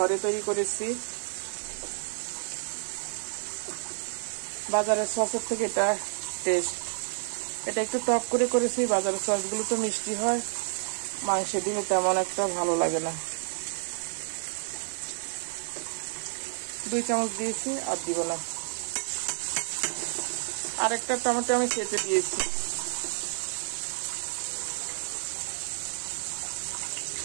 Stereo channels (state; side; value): silent; left; digital silence